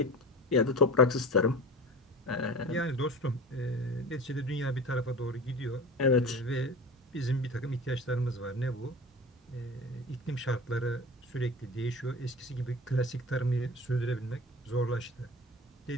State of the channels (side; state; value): both; normal; correlation 0.35